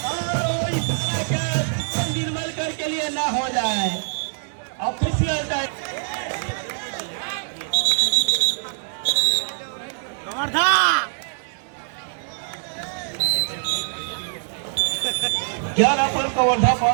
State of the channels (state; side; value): silent; left; 63 dB below the other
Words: निर्मल कर के लिए ना हो जाए ऑफिशियल क्या अपन कवर्धा पा